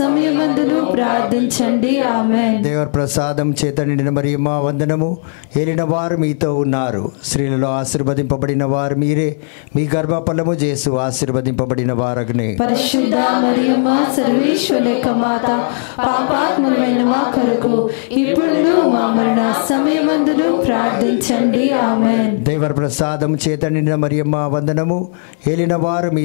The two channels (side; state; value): right; silent; 68 dB below the other